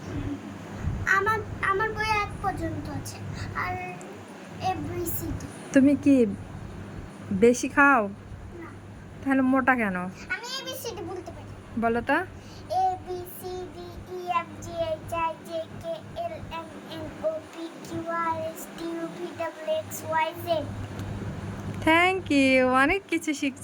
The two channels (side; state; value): both; identical; correlation 1.00